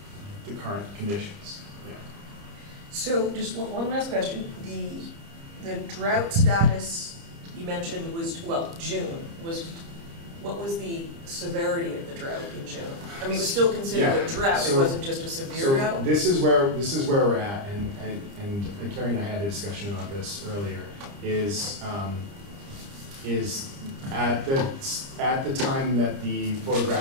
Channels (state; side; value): late; left; 30 ms